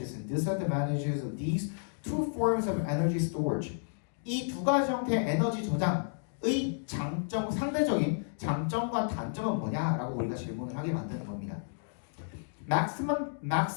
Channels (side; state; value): right; silent; digital silence